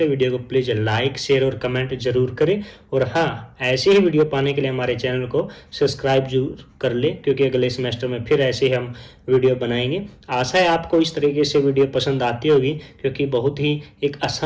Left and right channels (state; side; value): identical; both; correlation 1.00